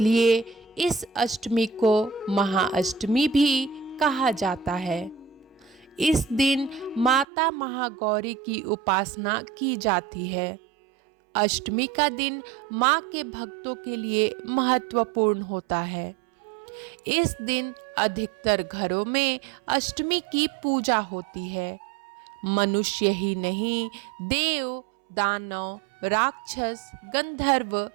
इस अष्टमी को महाअष्टमी भी कहा जाता है। इस दिन माता महागौरी की उपासना की जाती है। अष्टमी का दिन माँ के भक्तों के लिए महत्वपूर्ण होता है। इस दिन अधिकतर घरों में अष्टमी की पूजा होती है। मनुष्य ही नहीं, देव, दानव, राक्षस, गंधर्व,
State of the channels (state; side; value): drops out; left; at 7.2 s